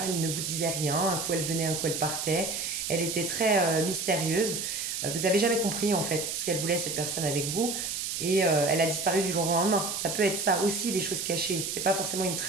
elle ne vous disait rien, un coup elle venait, un coup elle partait. Elle était très mystérieuse. Vous avez jamais compris en fait ce qu'elle voulait cette personne avec vous. Et elle a disparu du jour au lendemain. Ça peut être ça aussi, les choses cachées. C'est pas forcément une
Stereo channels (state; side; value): noise; right; hiss, 3 dB below the sound